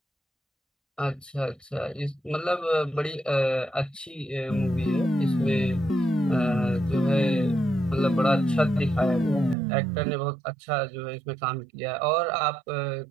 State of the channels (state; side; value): drops out; left; at 9.6 s